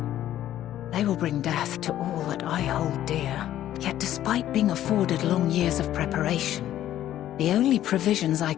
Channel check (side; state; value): right; quieter; 12.4 dB